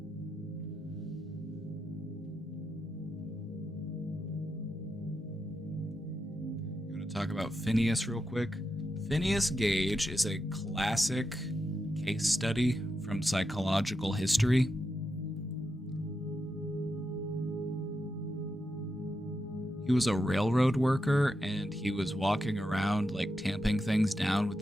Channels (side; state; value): both; normal; correlation 0.86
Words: Talk about Phineas real quick. Phineas Gage is a classic case study from psychological history. He was a railroad worker and he was walking around like tamping things down with